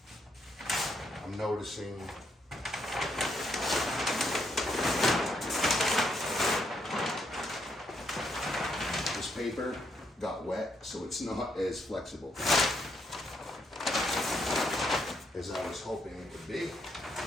I'm noticing this paper got wet, so it's not as flexible as I was hoping it would be.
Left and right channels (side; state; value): both; normal; correlation 0.76